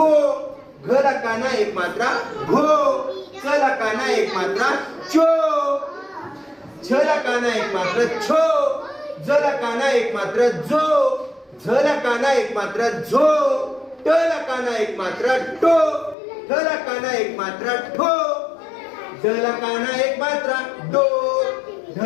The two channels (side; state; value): right; drops out; at 16.2 s